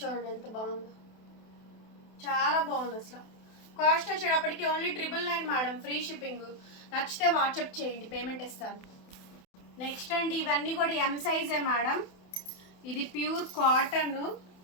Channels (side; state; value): right; late; 28 ms